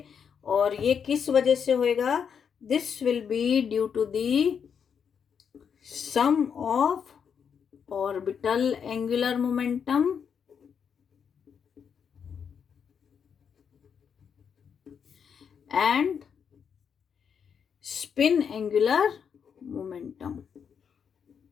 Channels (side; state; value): right; quieter; 7.1 dB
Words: और ये किस वजह से होएगा, this will be due to the sum of orbital angular momentum and spin angular momentum.